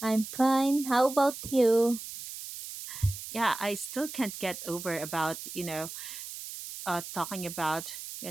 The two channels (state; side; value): noise; right; hiss, 10 dB below the sound